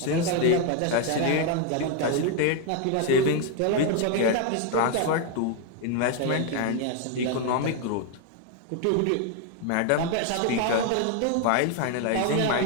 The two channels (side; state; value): both; different; correlation 0.01